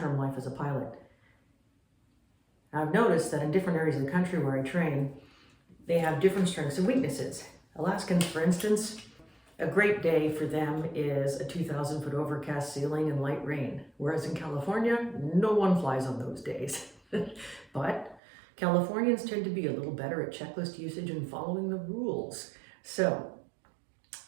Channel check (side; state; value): left; drops out; at 18.2 s